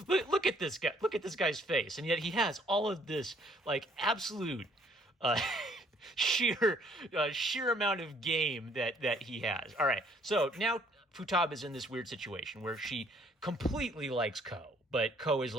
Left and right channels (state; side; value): normal; both; correlation 0.63